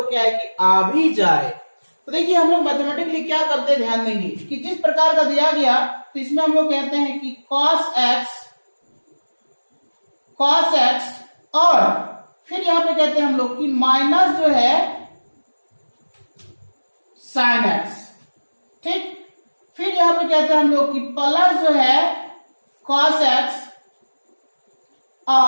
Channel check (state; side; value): inverted; both; correlation -1.00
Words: क्या है कि आ भी जाए। तो देखिए हम लोग मैथमेटिकली क्या करते हैं, ध्यान देंगे कि जिस प्रकार का दिया गया तो इसमें हम लोग कहते हैं कि cos x और फिर यहां पे कहते हैं हम लोग कि माइनस जो है sin x, ठीक। फिर यहां पे कहते हैं हम लोग कि प्लस जो है cos x